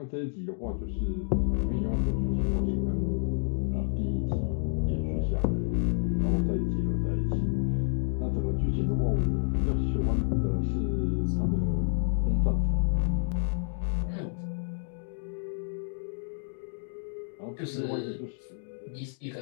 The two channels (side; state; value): right; silent; 58 dB below the other